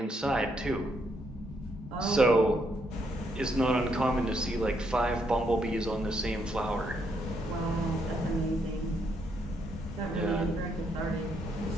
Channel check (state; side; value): normal; both; correlation 0.75